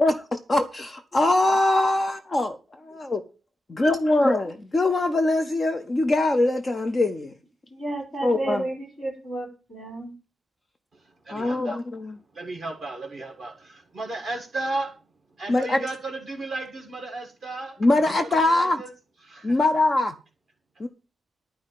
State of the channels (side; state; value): both; normal; correlation 0.90